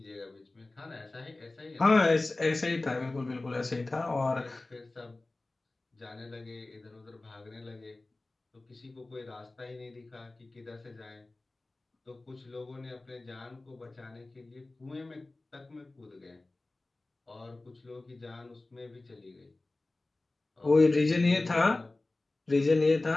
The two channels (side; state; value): right; quieter; 3.0 dB